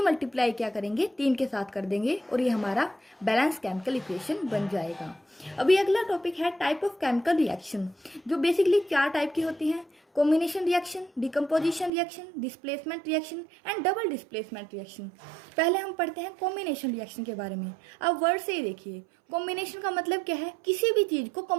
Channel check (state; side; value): drops out; left; at 11.9 s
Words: मल्टीप्लाई क्या करेंगे? 3 के साथ कर देंगे और ये हमारा बैलेंस केमिकल इक्वेशन बन जाएगा। अभी अगला टॉपिक है टाइप ऑफ केमिकल रिएक्शन, जो बेसिकली 4 टाइप की होती हैं: combination reaction, decomposition reaction, displacement reaction and double displacement reaction. पहले हम पढ़ते हैं कॉम्बिनेशन रिएक्शन के बारे में। अब वर्ड से ही देखिए, कॉम्बिनेशन का मतलब क्या है? किसी भी चीज़ को